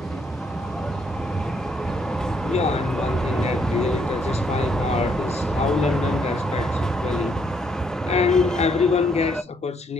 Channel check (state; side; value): normal; both; correlation 0.71